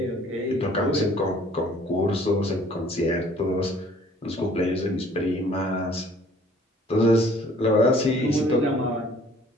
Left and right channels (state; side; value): normal; both; correlation 0.56